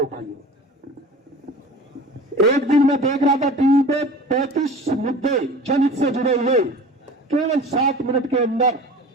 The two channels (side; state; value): both; normal; correlation 0.39